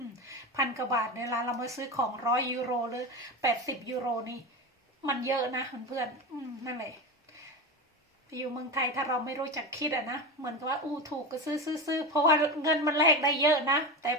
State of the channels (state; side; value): normal; both; correlation 0.21